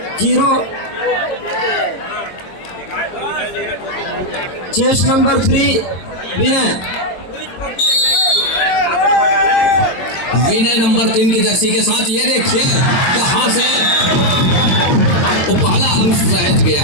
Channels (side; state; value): right; late; 22 ms